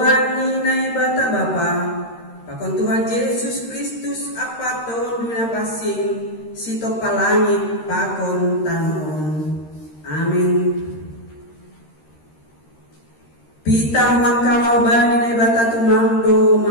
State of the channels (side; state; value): right; late; 13 ms